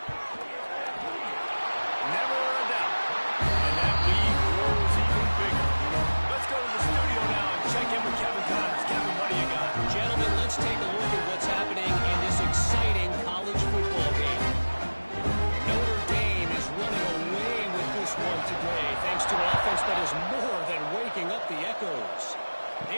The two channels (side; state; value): both; inverted; correlation -1.00